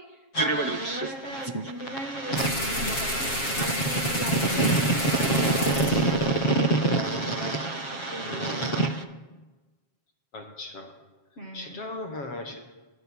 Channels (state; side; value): late; right; 7.4 ms